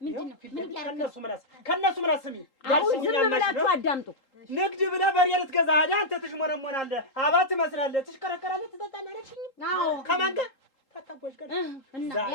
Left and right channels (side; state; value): right; late; 3.8 ms